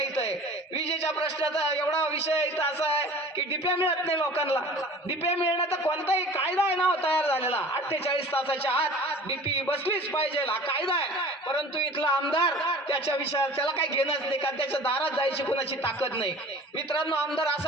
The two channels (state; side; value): normal; both; correlation 0.43